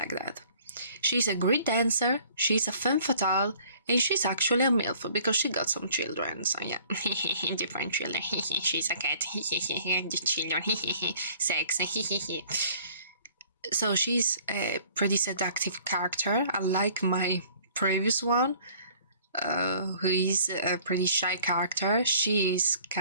that. She's a great dancer, she's a femme fatale, and she's actually a MILF because she got some children, so yeah, different children, she's a cat, children, sex, so she's a pretty seductive character, unlike my previous one, who is a pretty shy character. She's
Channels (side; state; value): both; inverted; correlation -0.54